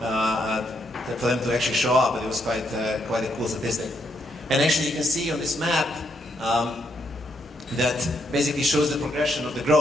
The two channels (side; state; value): both; normal; correlation 0.76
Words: for them to actually show up, but it was quite a cool statistic. And actually, you can see on this map that basically shows the progression of the